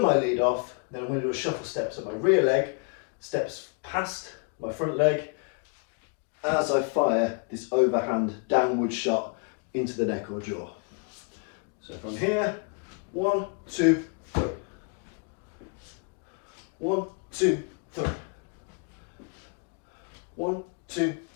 my lead off, then I'm going to do a shuffle step. So my rear leg steps past my front leg as I fire this overhand downward shot into the neck or jaw. So from here, 1, 2, 3. 1, 2, 3. 1, 2,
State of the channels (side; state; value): right; quieter; 37.1 dB